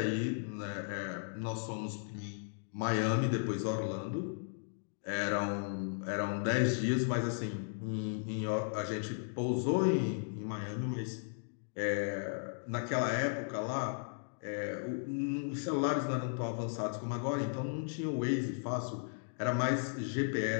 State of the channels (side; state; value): right; silent; digital silence